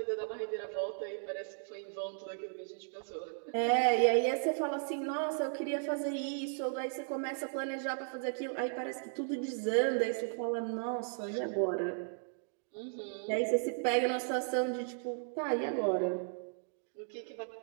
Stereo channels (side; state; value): left; silent; digital silence